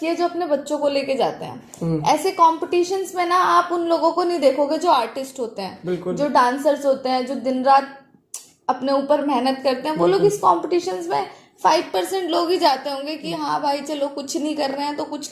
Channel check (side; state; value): both; identical; correlation 1.00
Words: है, जो अपने बच्चों को लेके जाते हैं ऐसे कॉम्पिटिशन्स में ना। आप उन लोगों को नहीं देखोगे जो आर्टिस्ट होते हैं, जो डांसर्स होते हैं, जो दिन रात अपने ऊपर मेहनत करते हैं। वो लोग इस कॉम्पिटिशन्स में 5% लोग ही जाते होंगे कि हाँ भाई चलो कुछ नहीं कर रहे हैं तो कुछ